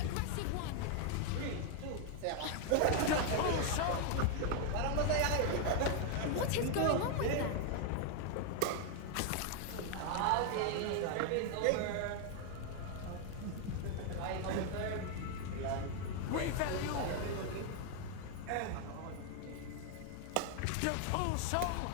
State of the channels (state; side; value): different; both; correlation 0.00